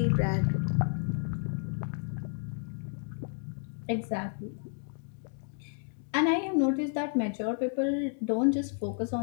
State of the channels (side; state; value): right; silent; 57 dB below the other